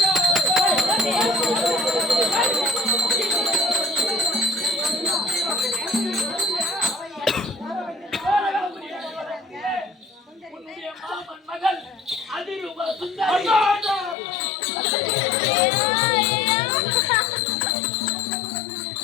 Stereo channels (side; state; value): right; drops out; at 14.2 s